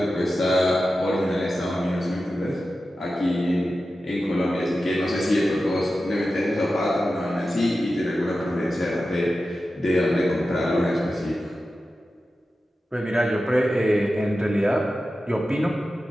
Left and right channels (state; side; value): normal; both; correlation 0.93